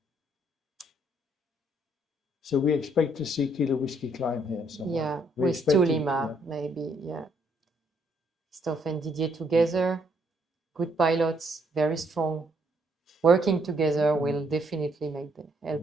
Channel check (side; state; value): both; normal; correlation 0.70